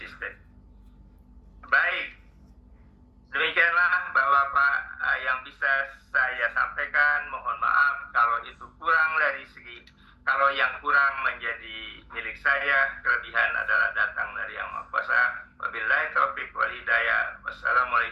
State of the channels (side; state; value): both; identical; correlation 1.00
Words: Baik, demikianlah Bapak-Bapak yang bisa saya sampaikan. Mohon maaf kalau itu kurang dari segi, kalau yang kurang menjadi milik saya, kelebihan adalah datang dari Yang Maha Kuasa. Wabillahi taufiq wal hidayah.